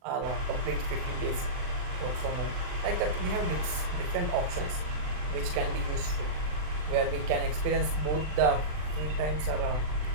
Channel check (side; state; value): left; late; 40 ms